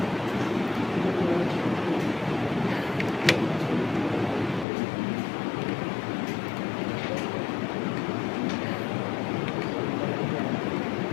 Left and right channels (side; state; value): right; drops out; at 4.7 s